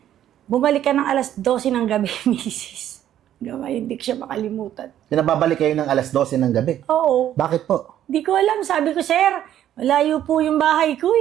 bumalik ka ng alas 12 ng gabi, misis. Gamay, hindi ko siya makalimutan. Pinababalik kayo ng alas 12 ng gabi. Oo. Bakit po? Di ko alam. Sabi ko, sir, malayo po yung bahay ko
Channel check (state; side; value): quieter; left; 11.3 dB